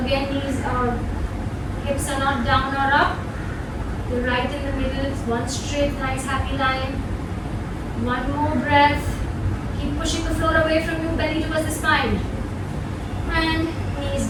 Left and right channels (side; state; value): both; identical; correlation 1.00